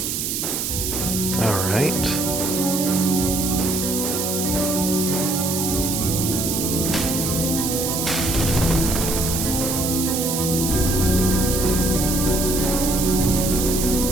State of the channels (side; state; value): right; noise; hiss, 2 dB below the sound